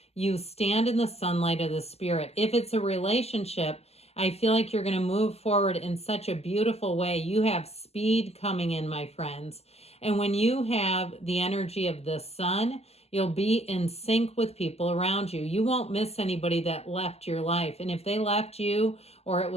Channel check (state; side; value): late; right; 0.30 ms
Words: you stand in the sunlight of the spirit. If it's a relationship, I feel like you're going to move forward in such a beautiful way. You have speed coming in, my friends. And when you have the energy of the sun, you'll be in sync with people around you. You won't miss anybody that left your life. And if they left you, or it